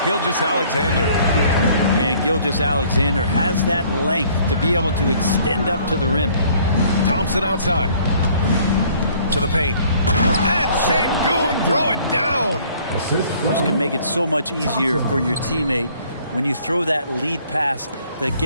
Gilgeous-Alexander. And Gilgeous-Alexander has that length to be able to extend up to the rim. Thompson outside to the paint. And Sengun throw it down. This can make it so much easier for your teammate when you throw that lead pass that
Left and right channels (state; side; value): inverted; both; correlation -0.58